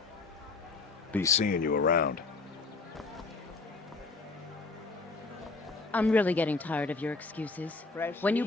Be seeing you around. I'm really getting tired of your excuses. When you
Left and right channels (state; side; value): quieter; right; 4.0 dB